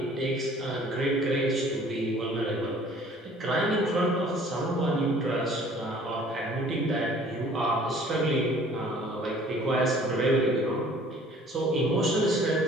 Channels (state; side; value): normal; both; correlation 0.53